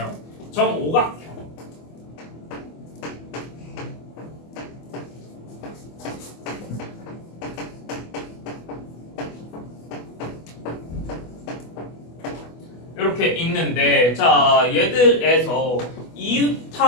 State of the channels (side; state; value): right; late; 24 ms